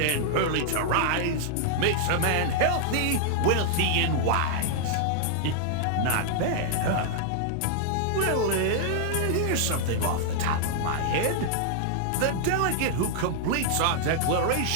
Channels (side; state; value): both; different; correlation -0.01